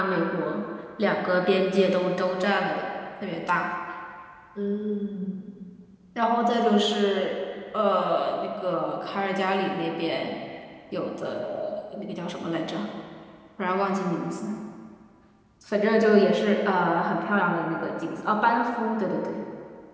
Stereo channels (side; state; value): both; identical; correlation 1.00